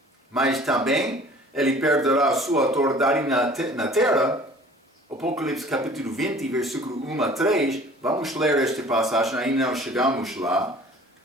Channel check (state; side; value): normal; both; correlation 0.49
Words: Mas também ele perderá a sua autoridade na terra. Apocalipse capítulo 20, versículo 1 a 3. Vamos ler esta passagem, ainda não chegamos lá.